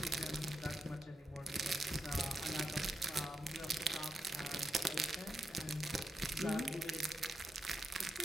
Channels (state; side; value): normal; both; correlation 0.87